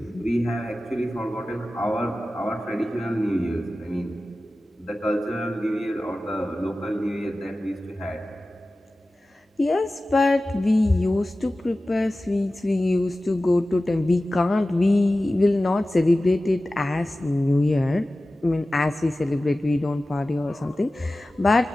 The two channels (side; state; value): both; normal; correlation 0.96